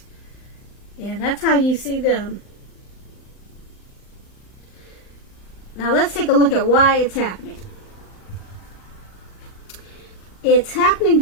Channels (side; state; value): right; late; 39 ms